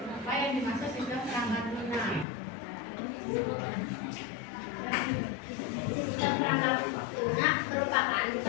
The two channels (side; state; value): right; drops out; at 2.2 s